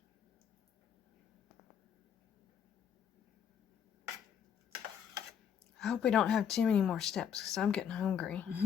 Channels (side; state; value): right; quieter; 8.2 dB